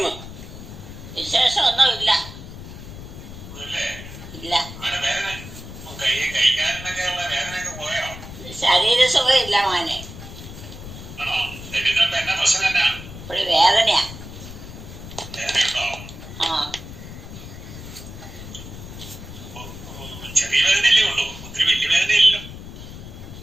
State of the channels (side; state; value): left; noise; rumble, 13 dB below the sound